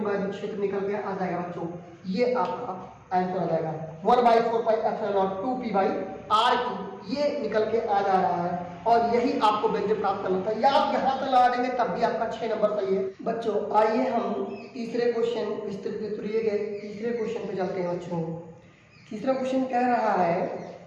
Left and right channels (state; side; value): identical; both; correlation 1.00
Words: क्षेत्र निकल के आ जाएगा बच्चों, ये आपका आंसर आ जाएगा 1/4 pi epsilon naught 2p by R cube. ये निकल के आ जा रहा है और यही आपको व्यंजक प्राप्त करना था, या आप यहाँ से लगा देंगे तब भी आपका 6 नंबर सही है बच्चों। आइए हम तीसरे क्वेश्चन विस्तृत गए, तीसरे क्वेश्चन पे चलते हैं बच्चों। तीसरा क्वेश्चन कह रहा है